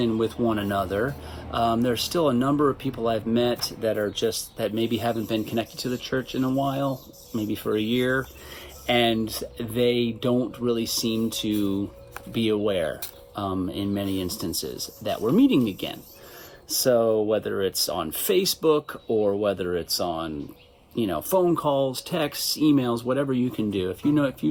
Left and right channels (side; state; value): both; identical; correlation 1.00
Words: with one another. There's still a number of people I've met that maybe haven't been connected to the church in a while, maybe for a year, and they don't really seem to be aware, in many instances, that we're meeting again. So whether it's on Facebook or whether it's on, phone calls, texts, emails, whatever you can do. If